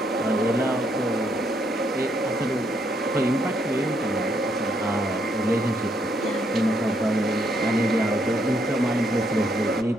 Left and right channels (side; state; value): both; normal; correlation 0.74